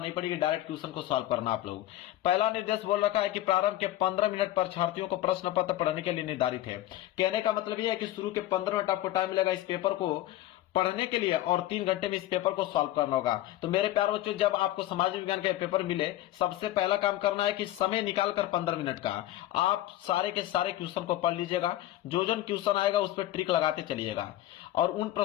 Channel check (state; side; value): quieter; right; 14.7 dB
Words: पड़ेगी, डायरेक्ट क्वेश्चन को सॉल्व करना आप लोग। पहला निर्देश बोल रखा है कि प्रारंभ के 15 मिनट परीक्षार्थियों को प्रश्न पत्र पढ़ने के लिए निर्धारित है। कहने का मतलब यह है कि शुरू के 15 मिनट आपको टाइम मिलेगा इस पेपर को पढ़ने के लिए और 3 घंटे में इस पेपर को सॉल्व करना होगा। तो मेरे प्यारे बच्चों, जब आपको समाज विज्ञान का पेपर मिले, सबसे पहला काम करना है कि समय निकालकर 15 मिनट का आप सारे के सारे क्वेश्चन को पढ़ लीजिएगा। जो क्वेश्चन आएगा उस पर ट्रिक लगाते चलिएगा और उन